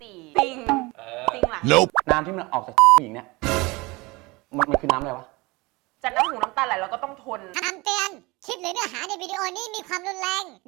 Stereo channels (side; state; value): left; quieter; 24.1 dB